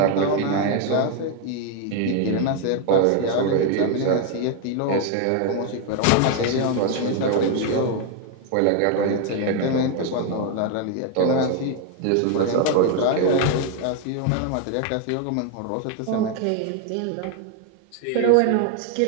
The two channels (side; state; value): both; different; correlation 0.01